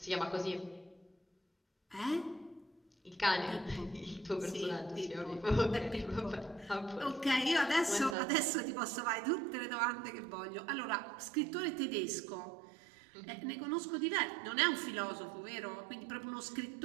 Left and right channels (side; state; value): left; drops out; at 8.2 s